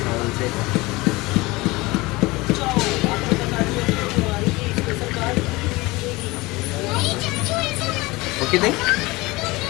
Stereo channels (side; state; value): right; quieter; 22.1 dB